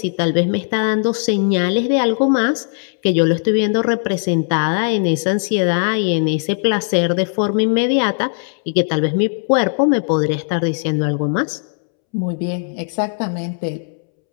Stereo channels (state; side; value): silent; right; 67 dB below the other